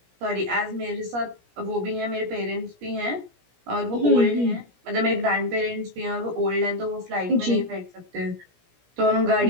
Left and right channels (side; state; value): left; late; 17 ms